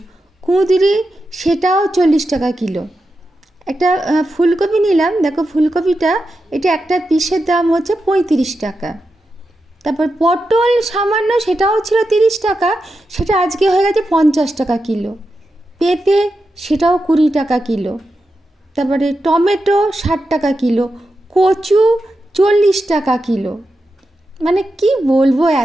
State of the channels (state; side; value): normal; both; correlation 0.89